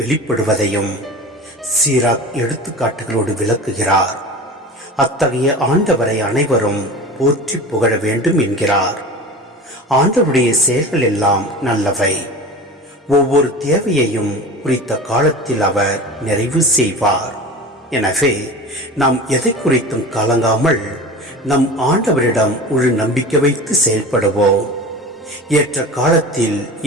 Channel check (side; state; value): both; normal; correlation 0.34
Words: சீராக் எடுத்துக்காட்டுகளோடு விளக்குகிறார். அத்தகைய ஆண்டவரை அனைவரும் போற்றி புகழ வேண்டும் என்கிறார். ஆண்டவருடைய செயல்கள் எல்லாம் நல்லவை. ஒவ்வொரு தேவையையும் குறித்த காலத்தில் அவர் நிறைவு செய்வார். எனவே நாம் எதை குறித்தும் கலங்காமல் நம் ஆண்டவரிடம் முழு நம்பிக்கை வைத்து செயல்படுவோம். ஏற்ற காலத்தில்